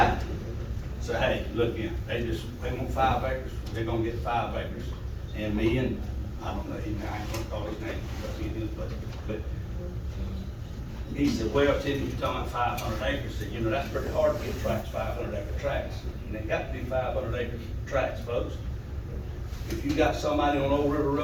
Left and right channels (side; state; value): both; identical; correlation 1.00